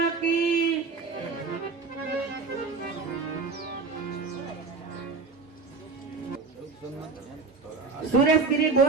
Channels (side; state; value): left; quieter; 4.5 dB